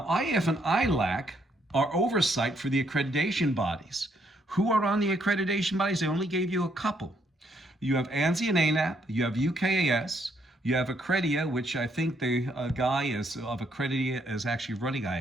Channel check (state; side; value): normal; both; correlation 0.72